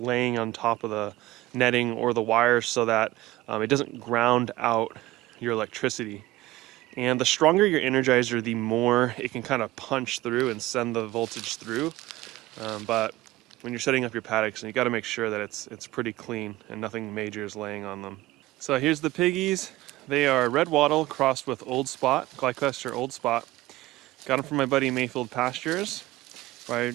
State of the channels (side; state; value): left; quieter; 17.5 dB